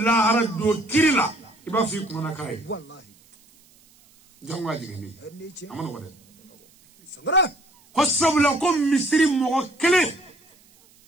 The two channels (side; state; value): right; noise; hiss, 30 dB below the sound